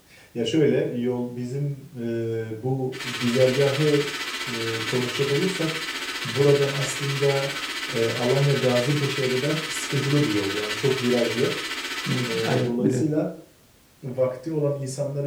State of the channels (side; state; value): both; identical; correlation 1.00